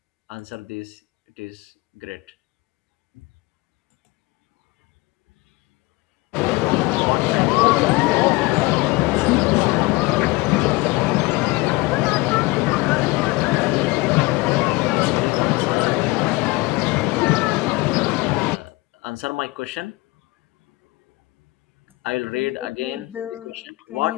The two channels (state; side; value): quieter; right; 22.5 dB